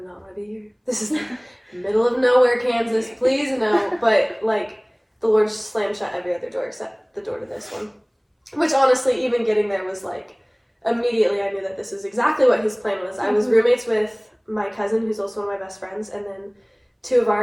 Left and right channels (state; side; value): identical; both; correlation 1.00